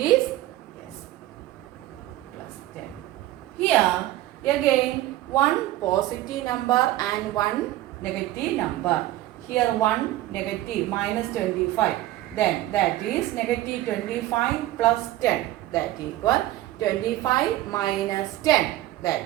yes plus 10. Here again one positive number and one negative number. Here one negative minus 25. Then that is negative 25 plus 10. That equal 25 minus 10.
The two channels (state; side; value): quieter; left; 15.5 dB